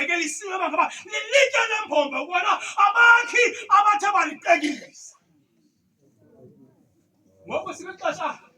ngaba lilitye lembombo ukubona abakhi abathe balitekisa. Ngoku sibexesha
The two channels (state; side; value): identical; both; correlation 1.00